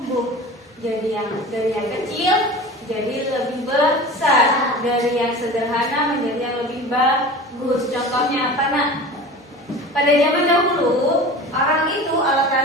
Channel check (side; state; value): both; normal; correlation 0.36